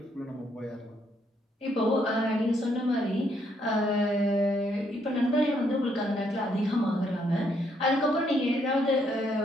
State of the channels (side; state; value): both; normal; correlation 0.72